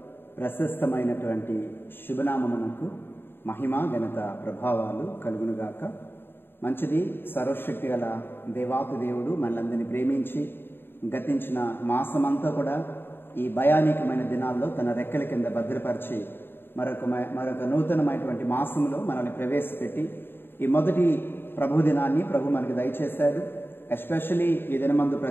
ప్రశస్తమైనటువంటి శుభనామమునకు మహిమ ఘనత ప్రభావాలు కలుగునుగాక. మంచిది. సర్వశక్తి గల దేవాతి దేవుడు మనలందరినీ ప్రేమించి గతించిన మాసమంతా కూడా ఈ భయానకమైన దినాల్లో తన రెక్కల కింద భద్రపరిచి మరొక నూతనమైనటువంటి మాసంలో మనల్ని ప్రవేశపెట్టి ఈ మొదటి ప్రభు దినాన్ని ప్రభు మనకి దయచేశాడు. ఎస్పెషలీ ఈ దినమందు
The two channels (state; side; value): late; right; 0.10 ms